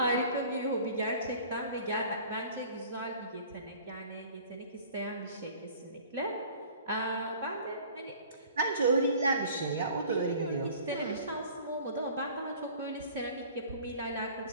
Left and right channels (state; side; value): inverted; both; correlation -0.47